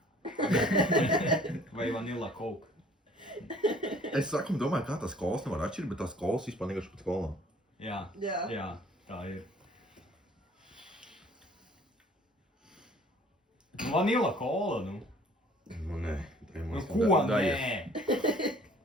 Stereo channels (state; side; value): normal; both; correlation 0.54